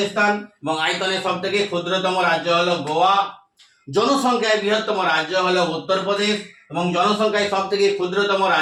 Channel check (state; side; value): identical; both; correlation 1.00